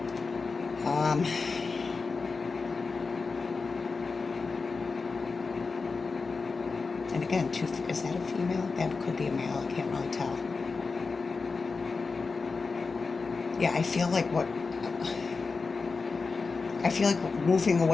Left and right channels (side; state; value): right; quieter; 4.4 dB